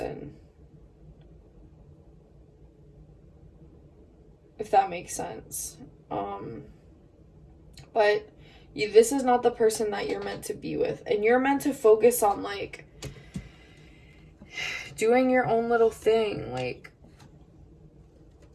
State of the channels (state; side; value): identical; both; correlation 1.00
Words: If that makes sense. But this is not the person that you're meant to be with. And you're meant to focus on, like, doing your own little thing. Like,